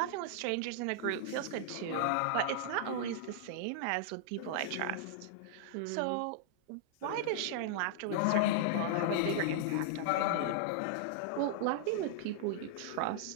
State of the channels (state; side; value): different; both; correlation -0.01